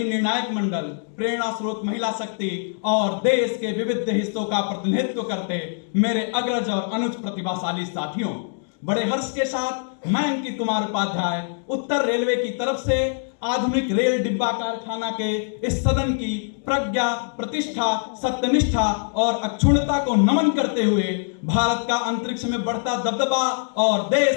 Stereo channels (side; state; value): right; silent; digital silence